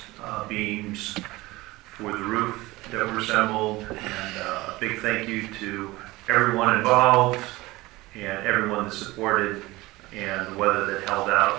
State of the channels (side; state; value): left; quieter; 20.0 dB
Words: beams, for the roof that were assembled, and a big thank you to everyone involved and everyone that supported, and the weather that held